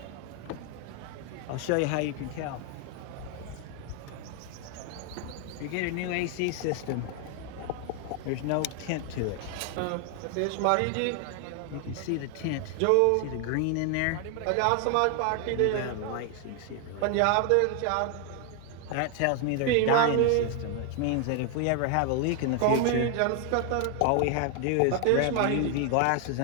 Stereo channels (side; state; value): both; different; correlation 0.00